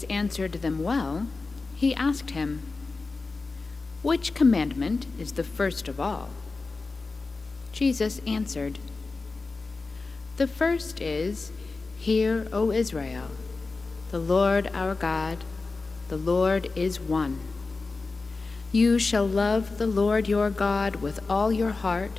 answered them well, he asked him, "Which commandment is the first of all?" Jesus answered, "The first is, 'Hear, O Israel, the Lord our God, the Lord is one. You shall love the Lord your God with all your heart,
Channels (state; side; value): quieter; right; 3.9 dB